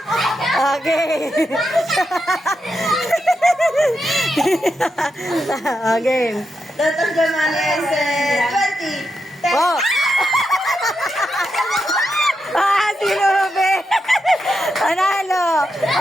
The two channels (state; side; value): normal; both; correlation 0.85